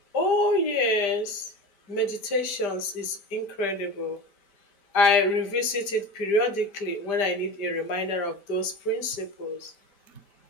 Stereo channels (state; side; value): late; right; 5.0 ms